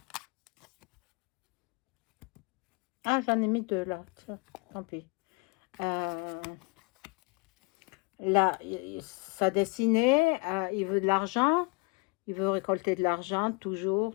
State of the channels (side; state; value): right; quieter; 28.9 dB